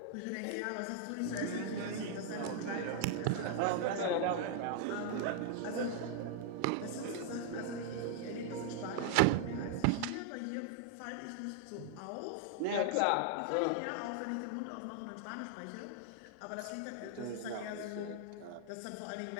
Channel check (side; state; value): both; different; correlation 0.00